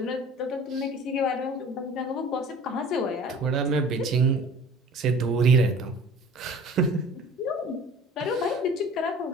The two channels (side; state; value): both; normal; correlation 0.45